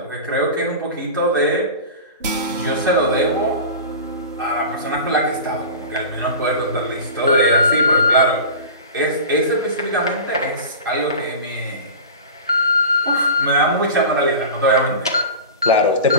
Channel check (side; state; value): both; inverted; correlation -0.33